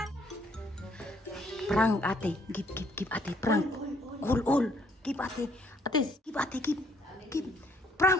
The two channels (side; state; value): both; normal; correlation 0.66